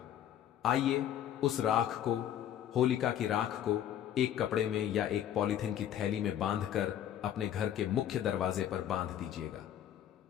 आइए। उस राख को, होलिका की राख को एक कपड़े में या एक पॉलीथिन की थैली में बांधकर अपने घर के मुख्य दरवाजे पर बांध दीजिएगा।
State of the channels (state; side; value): quieter; right; 10.6 dB